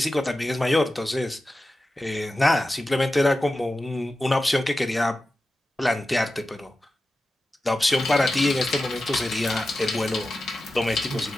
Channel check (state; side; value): normal; both; correlation 0.93